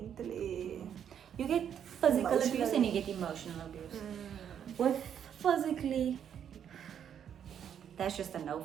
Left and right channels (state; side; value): quieter; left; 8.8 dB